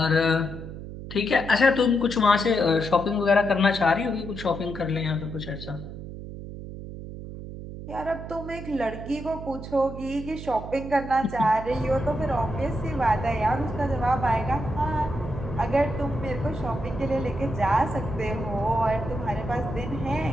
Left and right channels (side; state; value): right; noise; hum, 10 dB below the sound